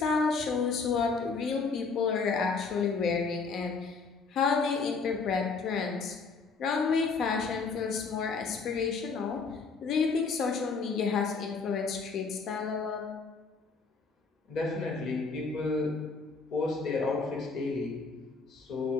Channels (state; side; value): quieter; right; 4.7 dB